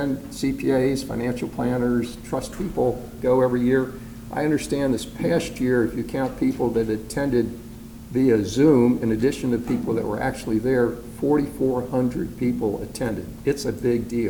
CPAs, financial planners, trust people go every year. I understand this past year, if you count people that attended via Zoom, in addition to people that were actually there, 4,400 people attended. It's a big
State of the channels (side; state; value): both; identical; correlation 1.00